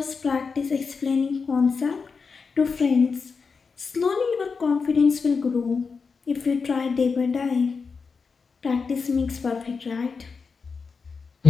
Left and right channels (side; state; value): right; quieter; 5.1 dB